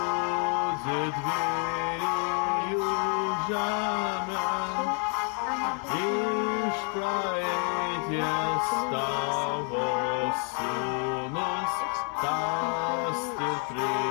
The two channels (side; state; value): right; quieter; 39.5 dB